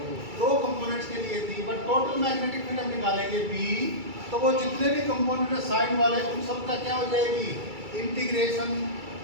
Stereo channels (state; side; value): late; left; 2.3 ms